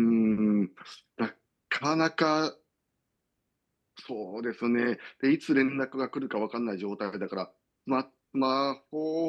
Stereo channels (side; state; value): both; identical; correlation 1.00